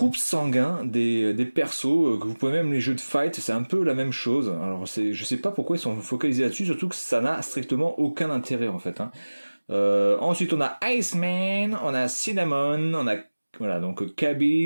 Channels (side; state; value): both; inverted; correlation -1.00